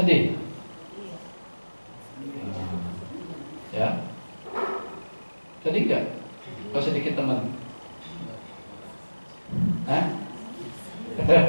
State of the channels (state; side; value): inverted; both; correlation -1.00